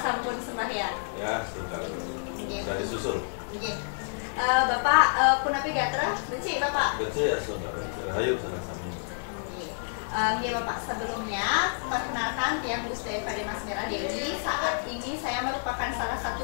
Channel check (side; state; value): right; silent; digital silence